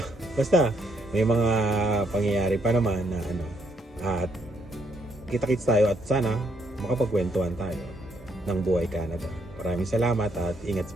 Basta may mga pangyayari pa naman na at kita-kits tayo at sana makapagkwentuhan tayo ng buhay Canada. Maraming salamat at ingat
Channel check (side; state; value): both; normal; correlation 0.73